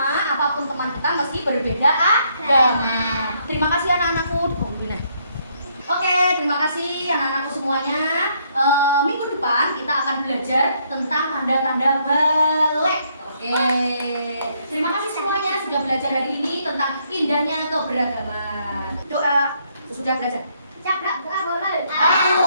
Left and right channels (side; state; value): both; inverted; correlation -0.71